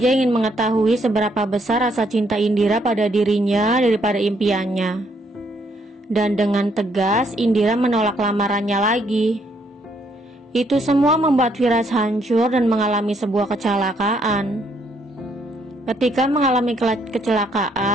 ingin mengetahui seberapa besar rasa cinta Indira pada dirinya daripada impiannya. Dan dengan tegas, Indira menolak lamarannya lagi. Itu semua membuat Firas hancur dan mengalami sebuah kecelakaan. Ketika mengalami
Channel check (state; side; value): normal; both; correlation 0.71